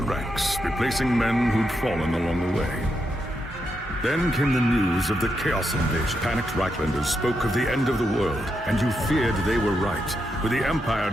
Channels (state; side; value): normal; both; correlation 0.83